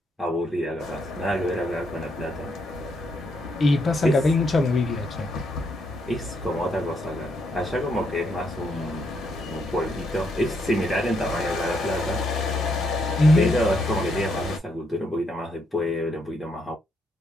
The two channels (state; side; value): normal; both; correlation 0.76